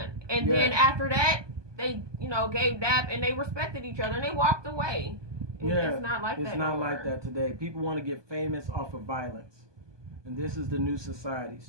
And then after that, they, you know, gave dap and they respected each other and they walked away. It's not like that It's not like that today. People want to get famous off of violence. And this is the new society.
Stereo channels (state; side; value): late; left; 1.2 ms